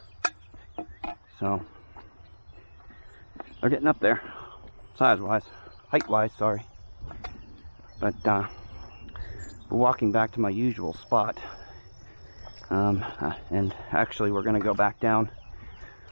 So they're getting up there, size-wise, height-wise, sorry. But we're walking back to my usual spot. And actually we're gonna go back down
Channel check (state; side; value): inverted; both; correlation -1.00